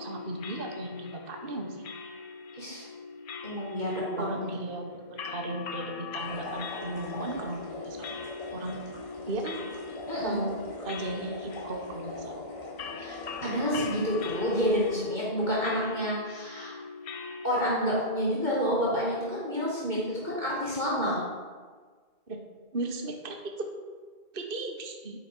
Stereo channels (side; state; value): left; late; 2.1 ms